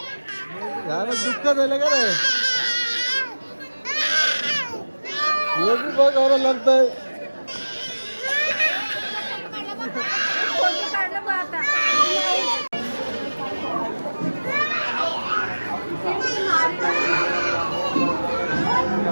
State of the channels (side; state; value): both; inverted; correlation -1.00